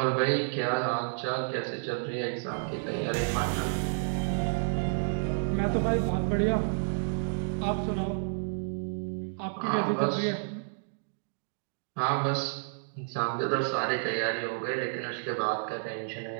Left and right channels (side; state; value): left; silent; digital silence